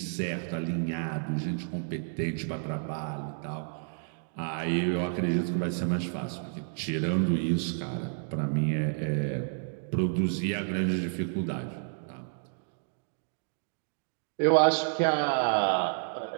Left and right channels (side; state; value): left; silent; digital silence